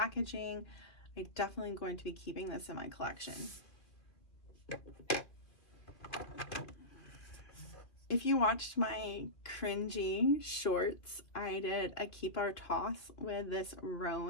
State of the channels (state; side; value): late; right; 2.5 ms